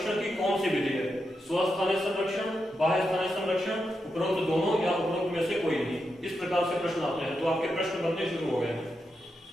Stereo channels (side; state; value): both; normal; correlation 0.86